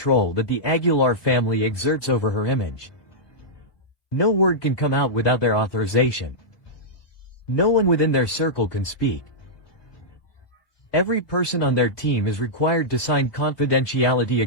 that the Aguilar family exerts over her image. No word can come out without their authorization. No one within their circle can speak. Every person on their team is required to sign confidentiality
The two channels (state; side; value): late; right; 3.2 ms